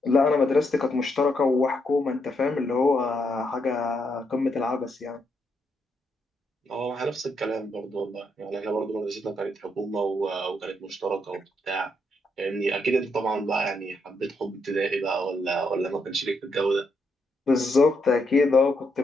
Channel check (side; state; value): both; normal; correlation 0.78